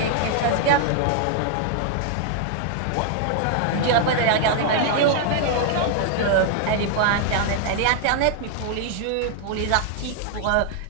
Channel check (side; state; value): both; different; correlation 0.00